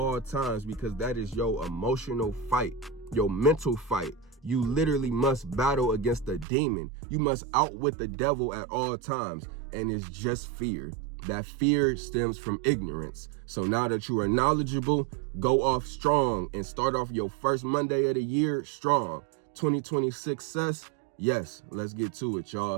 times, because that is your emotional fight, your mental fight. You literally must battle against the demon. You must outwit the devil at all times. And it's just fear. That fear stems from ignorance. So now that you are knowledgeable, go off strong and start off your first Monday of the year strong. 2020 success. Yes, let's get to it,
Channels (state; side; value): drops out; left; at 6.5 s